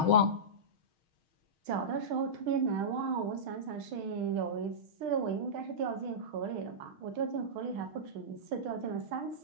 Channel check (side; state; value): left; late; 6.4 ms